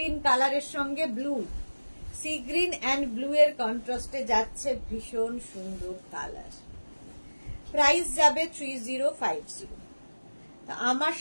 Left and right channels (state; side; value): inverted; both; correlation -1.00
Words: কালারের সঙ্গে blue, C green and blue এর কন্ট্রাস্টে যাচ্ছে, ভীষণ সুন্দর কালার। প্রাইস যাবে 3050। আমার